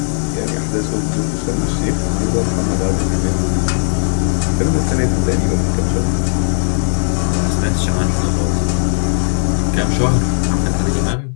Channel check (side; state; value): right; silent; digital silence